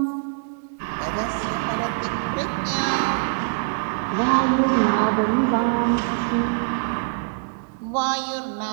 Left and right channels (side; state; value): left; silent; digital silence